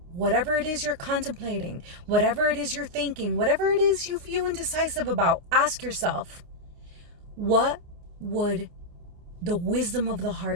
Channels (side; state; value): left; late; 29 ms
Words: whatever it is you're contemplating, whatever it is you're thinking, whatever it is you feel indecisive about, ask yourself, what would the wisdom of the